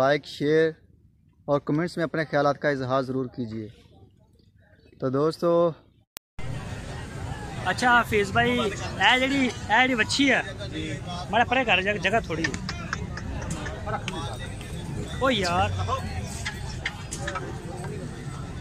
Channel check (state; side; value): identical; both; correlation 1.00